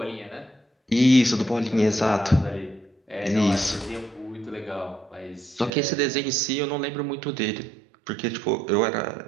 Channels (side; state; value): left; drops out; at 5.7 s